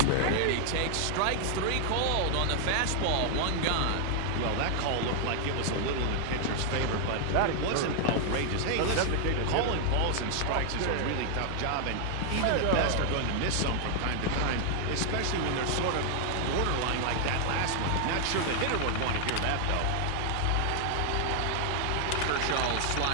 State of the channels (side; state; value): both; different; correlation 0.00